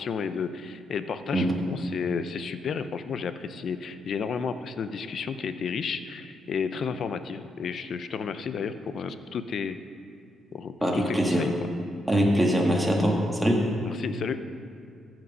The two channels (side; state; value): both; normal; correlation 0.81